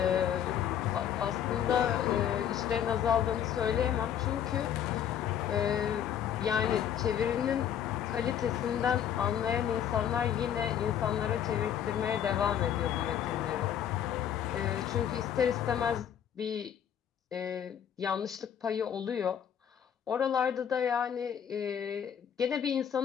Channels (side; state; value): right; quieter; 9.3 dB